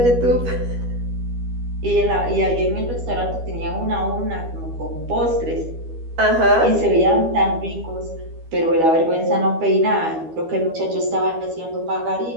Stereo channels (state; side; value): late; left; 12 ms